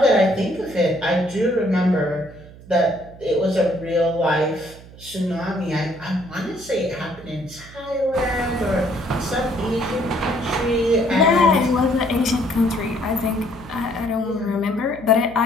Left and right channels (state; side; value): noise; right; hum, 19 dB below the sound